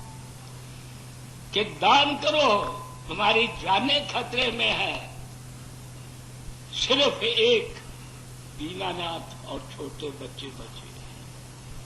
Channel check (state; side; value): identical; both; correlation 1.00